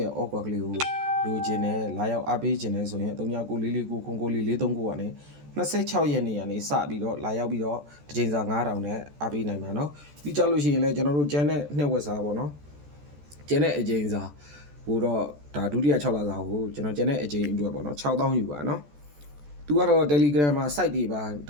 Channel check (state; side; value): late; left; 14 ms